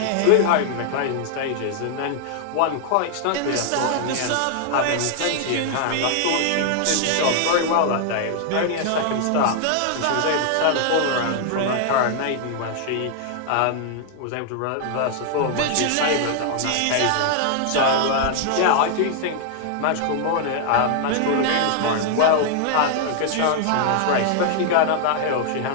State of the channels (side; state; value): both; different; correlation 0.00